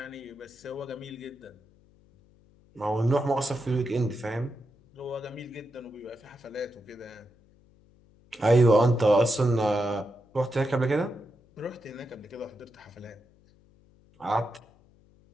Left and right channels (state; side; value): noise; left; hum, 29 dB below the sound